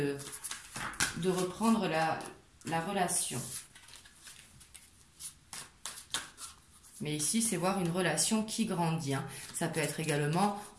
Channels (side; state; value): both; identical; correlation 1.00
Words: reprendre la relation. Mais ici, c'est voir une relation qui grandit. Hein. Ça peut être également